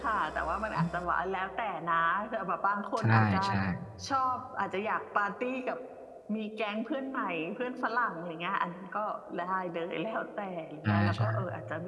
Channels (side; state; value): both; identical; correlation 1.00